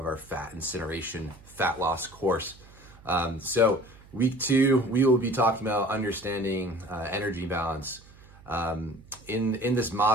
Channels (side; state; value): right; noise; hum, 23 dB below the sound